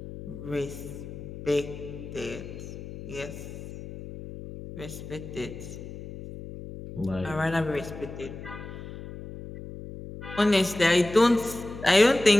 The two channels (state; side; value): noise; left; hum, 12 dB below the sound